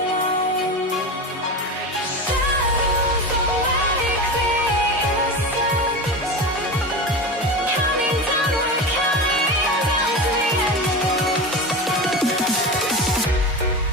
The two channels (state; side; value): normal; both; correlation 0.25